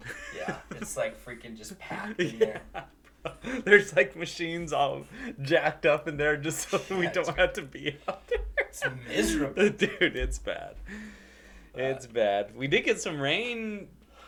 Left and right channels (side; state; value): both; identical; correlation 1.00